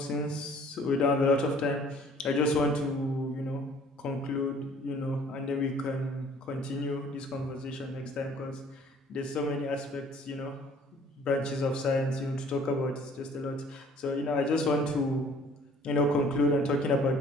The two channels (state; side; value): normal; both; correlation 0.55